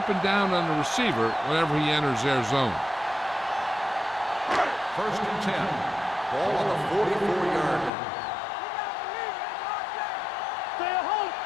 down on the receiver whenever he enters their zone. First and 10. Ball on the 44-yard line. Stay at home.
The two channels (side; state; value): right; drops out; at 7.9 s